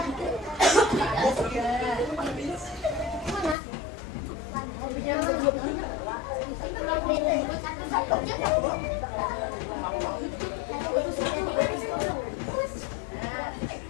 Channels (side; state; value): right; drops out; at 3.6 s